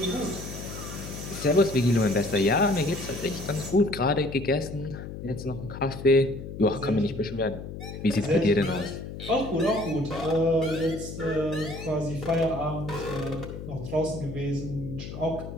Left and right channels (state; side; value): noise; left; hum, 9 dB below the sound